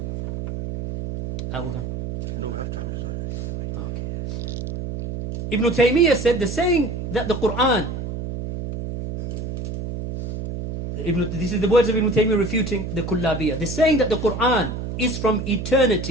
No, we have time. Okay. Ibn Taymiyyah said the saying that the Quran, this is the words of Ibn Taymiyyah refuting the Kullabiyah. The saying that the Quran is from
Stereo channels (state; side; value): noise; right; hum, 6 dB below the sound